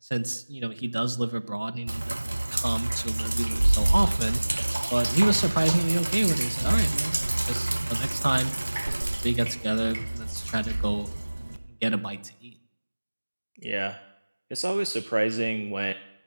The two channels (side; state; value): both; inverted; correlation -1.00